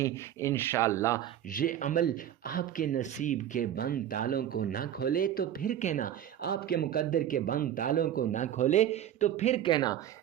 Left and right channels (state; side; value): quieter; left; 10.9 dB